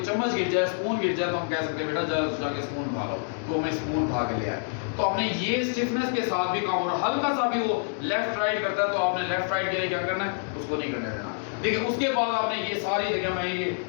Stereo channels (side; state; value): right; silent; digital silence